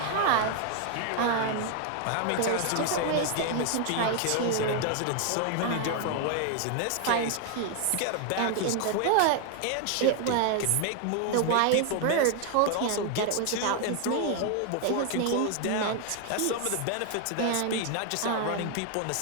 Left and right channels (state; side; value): different; both; correlation 0.00